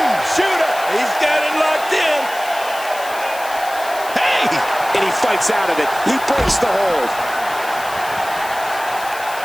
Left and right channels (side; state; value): left; noise; hiss, 15 dB below the sound